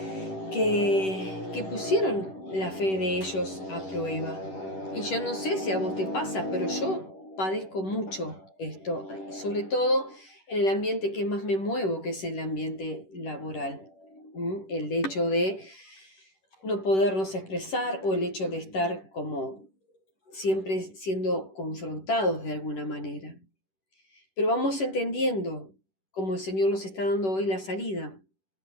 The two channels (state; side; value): late; right; 10 ms